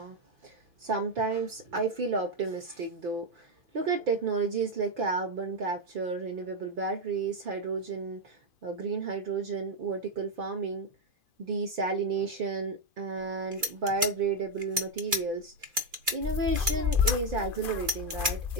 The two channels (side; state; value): left; late; 2.6 ms